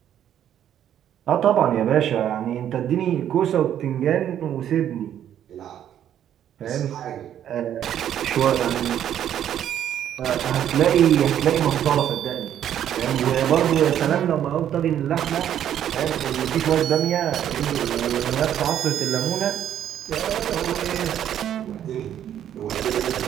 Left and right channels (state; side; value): quieter; left; 10.4 dB